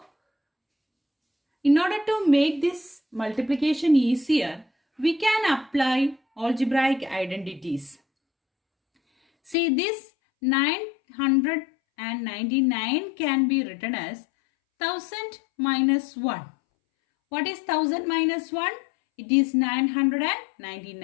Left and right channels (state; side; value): drops out; right; at 9.6 s